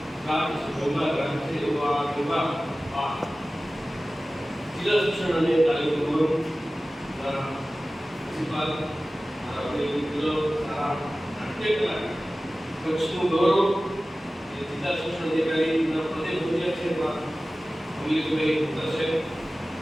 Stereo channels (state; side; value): normal; both; correlation 0.96